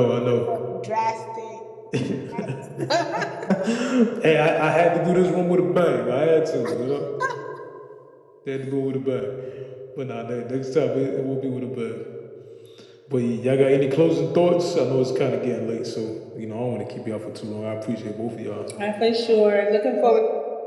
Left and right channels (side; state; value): both; identical; correlation 1.00